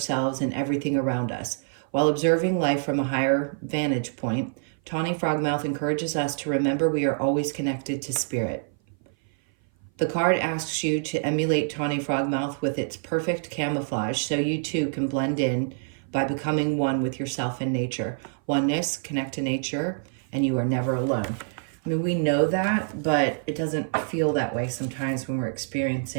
and everything around us. While observing life from a higher vantage point, Tawny Frogmouth encourages us to remember we are always connected to spirit. The card asks you to emulate Tawny Frogmouth with its perfect camouflage so you too can blend in by becoming one with yourself and nature. Oneness, connect to nature, and you are never alone. I mean, we know that, but it doesn't feel that way sometimes when we're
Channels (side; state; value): left; silent; 57 dB below the other